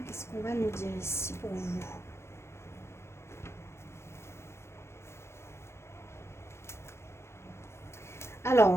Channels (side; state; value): right; late; 0.13 ms